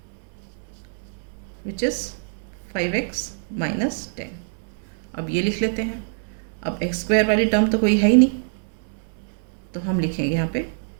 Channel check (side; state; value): left; silent; 62 dB below the other